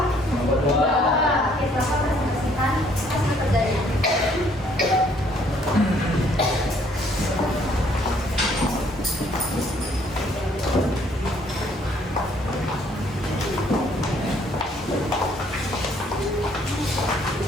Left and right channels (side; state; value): both; normal; correlation 0.64